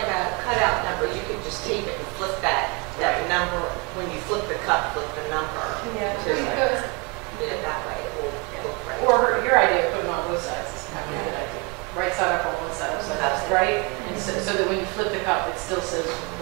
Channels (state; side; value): quieter; left; 30.4 dB